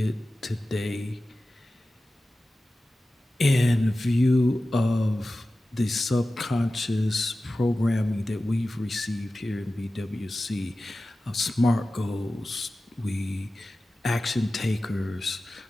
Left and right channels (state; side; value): normal; both; correlation 0.95